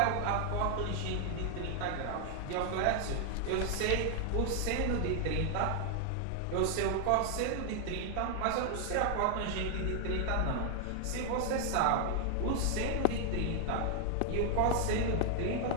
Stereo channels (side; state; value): both; different; correlation 0.00